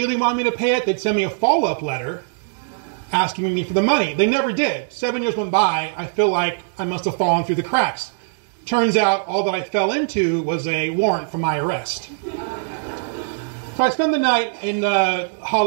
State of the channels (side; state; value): left; silent; digital silence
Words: wanted me to pay it, they'd send me a follow-up letter asking me for the money. They never did. 7 years went by. I feel like I must have fallen through the cracks. Turns out all that I fell into was a warrant for my arrest. So I spend the night in